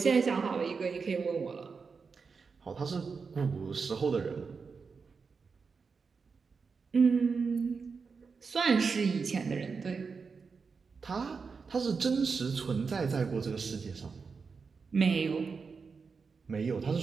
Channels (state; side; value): quieter; left; 5.1 dB